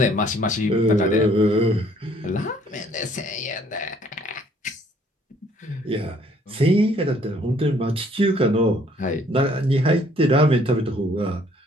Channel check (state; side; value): normal; both; correlation 0.61